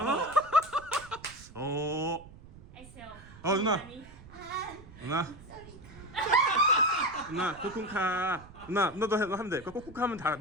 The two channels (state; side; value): noise; right; rumble, 19 dB below the sound